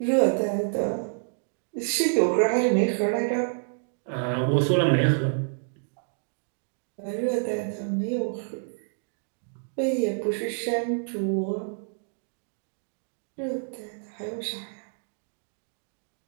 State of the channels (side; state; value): left; silent; digital silence